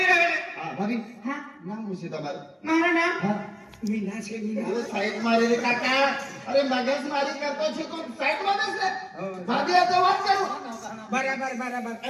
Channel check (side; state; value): both; identical; correlation 1.00